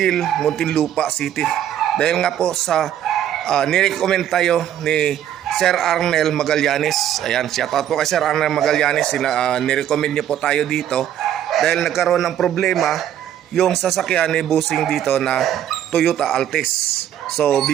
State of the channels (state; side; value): quieter; left; 10.7 dB